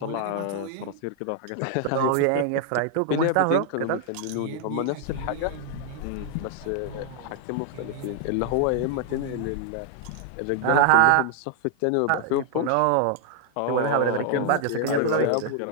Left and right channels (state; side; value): different; both; correlation 0.00